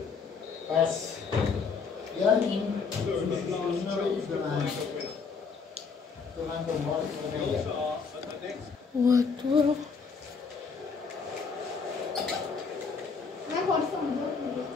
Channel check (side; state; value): right; quieter; 5.3 dB